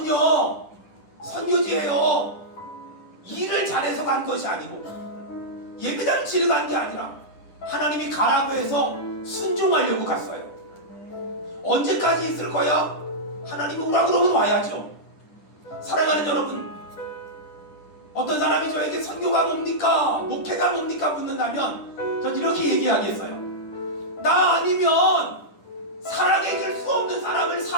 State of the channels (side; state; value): right; late; 10 ms